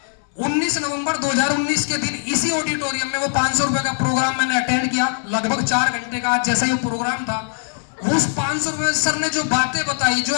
19 नवंबर 2019 के दिन इसी ऑडिटोरियम में वो 500 रुपए का प्रोग्राम मैंने अटेंड किया, लगभग 4 घंटे का। आज जैसा ये प्रोग्राम था, उस 500 रुपए सर ने जो बातें बताई, जो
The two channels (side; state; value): right; silent; 65 dB below the other